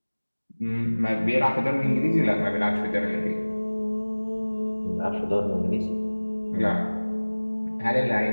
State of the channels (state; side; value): inverted; both; correlation -1.00